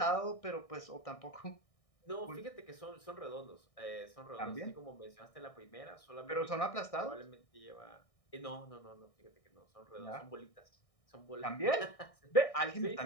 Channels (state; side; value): late; right; 1.6 ms